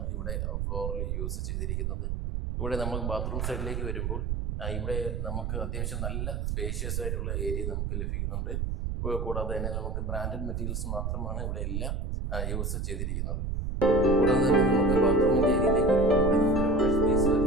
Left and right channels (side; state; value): right; noise; rumble, 1 dB below the sound